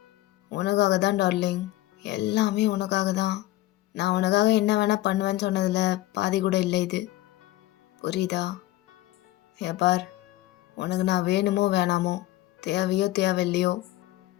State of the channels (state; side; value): quieter; right; 16.4 dB